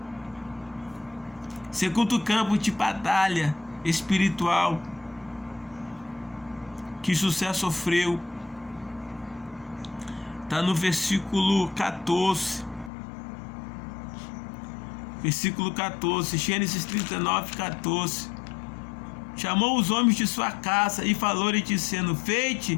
Segundo campo de batalha espiritual que José sofreu está no versículo 14. Versículo 14, Gênesis 39, 14. Chamou os homens de sua casa e falou-lhe dizendo: Feite,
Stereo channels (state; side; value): drops out; right; at 12.9 s